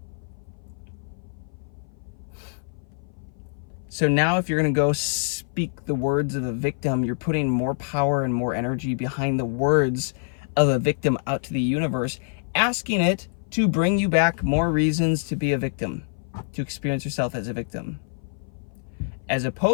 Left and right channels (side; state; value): right; silent; 57 dB below the other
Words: So now if you're going to go speak the words of a victim, you're putting more power and more energy behind the words of a victim out to the universe, asking it to bring you back more reasons to be a victim, to experience yourself as a victim. As